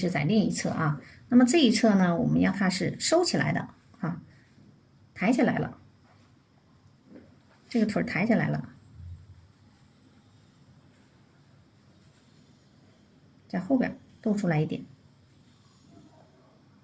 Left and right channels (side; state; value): both; identical; correlation 1.00